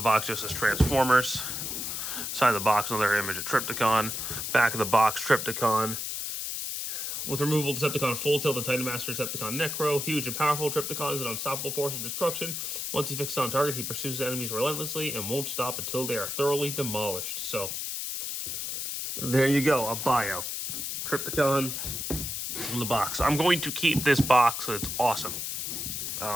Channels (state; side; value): noise; left; hiss, 4 dB below the sound